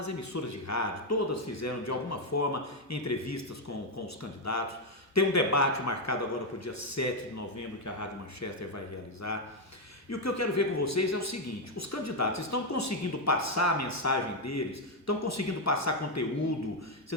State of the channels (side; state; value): both; normal; correlation 0.03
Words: emissoras de rádio, todas fizeram de alguma forma entrevistas com os candidatos. Tem um debate marcado agora para o dia 7 de novembro que a Rádio Manchester vai realizar. E o que eu quero ver com vocês é o seguinte: os candidatos estão conseguindo passar a mensagem deles, estão conseguindo passar conteúdo.